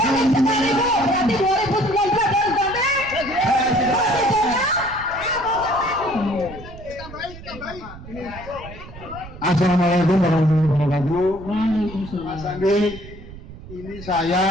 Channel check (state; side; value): noise; right; rumble, 15 dB below the sound